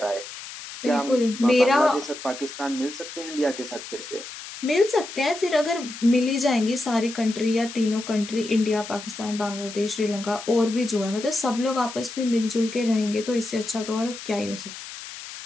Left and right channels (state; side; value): noise; left; hiss, 12 dB below the sound